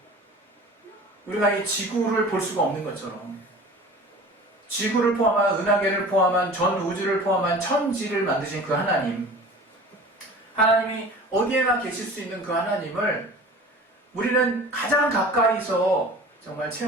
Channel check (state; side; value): normal; both; correlation 0.41